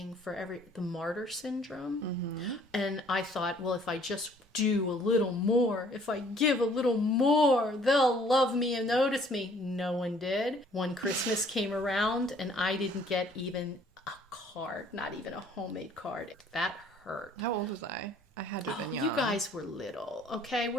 for the martyr syndrome. Mm-hmm. And I thought, well, if I just do a little more, if I give a little more, they'll love me and notice me. No one did. One Christmas came around and I didn't get even a card, not even a homemade card. That hurt. How old was I? I had to have been young. You guys were little, okay?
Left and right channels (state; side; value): normal; both; correlation 0.58